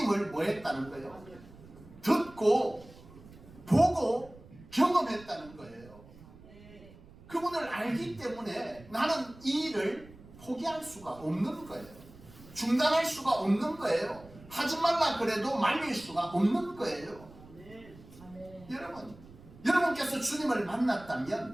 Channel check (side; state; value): right; noise; rumble, 21 dB below the sound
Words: 뭐 했다는 거예요? 듣고 보고 경험했다는 거예요. 그분을 알기 때문에 나는 이 일을 포기할 수가 없는 거예요. 중단할 수가 없는 거예요. 하지 말라 그래도 말릴 수가 없는 거예요. 여러분, 여러분께서 주님을